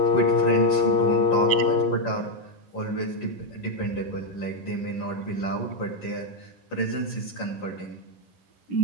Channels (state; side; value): late; right; 11 ms